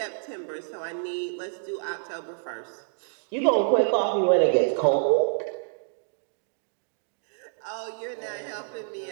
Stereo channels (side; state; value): left; silent; digital silence